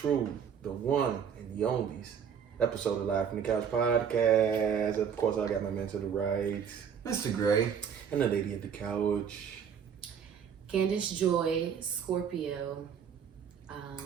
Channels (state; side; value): quieter; left; 7.6 dB